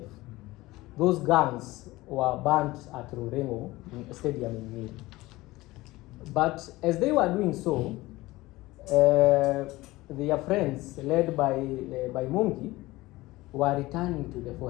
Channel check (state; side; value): quieter; right; 19.3 dB